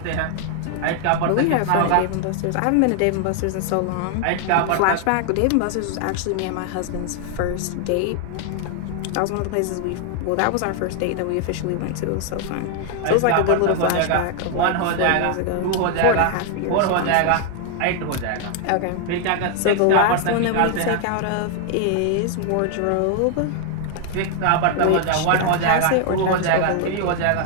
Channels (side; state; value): both; different; correlation 0.00